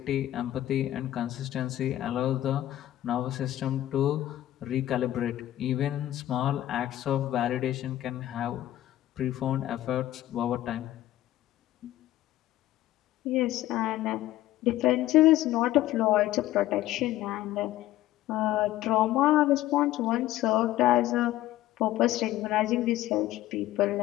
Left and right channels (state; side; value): quieter; right; 14.4 dB